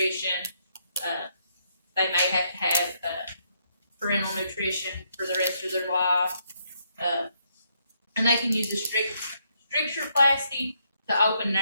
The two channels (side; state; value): both; inverted; correlation -0.75